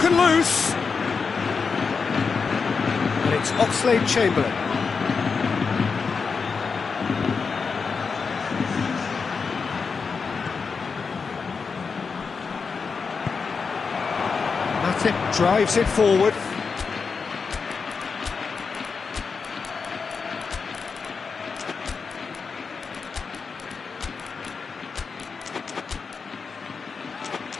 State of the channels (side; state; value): right; quieter; 5.2 dB